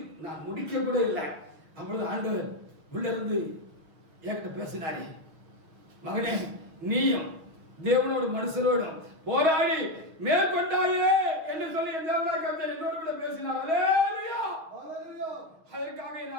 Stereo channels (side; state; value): left; late; 6.1 ms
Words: நான் முடிக்க கூட இல்லை. அப்பொழுது ஆண்டவர் உள்ள இருந்து என்கிட்ட பேசினாரே, மகனே நீயும் தேவனோடு மனுஷரோடும் போராடி மேற்கொண்டாயே என்று சொல்லி என் தேவனாய் கர்த்தர் என்னோடு கூட பேசினார். அல்லேலூயா. அதற்காக என்